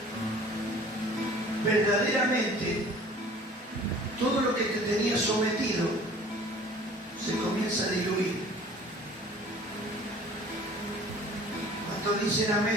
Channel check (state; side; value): normal; both; correlation 0.49